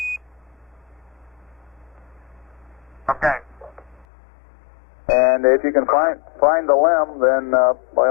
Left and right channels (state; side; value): drops out; right; at 4.0 s